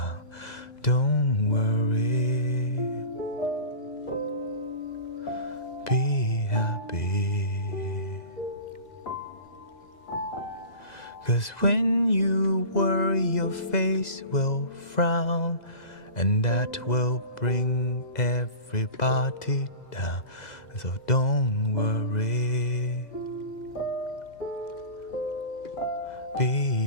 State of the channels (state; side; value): late; right; 2.0 ms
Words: Don't worry, be happy. 'Cause when you worry, your face will frown, and that will bring everybody down. So don't worry,